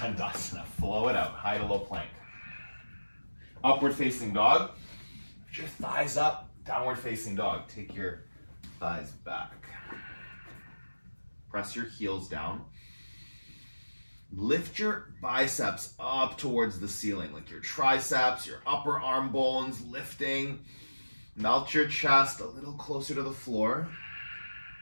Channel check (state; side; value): inverted; both; correlation -1.00